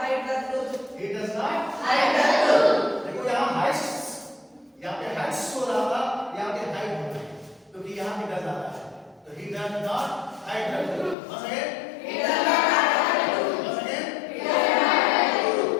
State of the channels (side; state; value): right; drops out; at 11.2 s